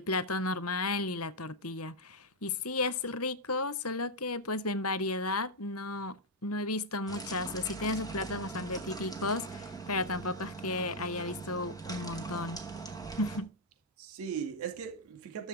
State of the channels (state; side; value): normal; both; correlation -0.02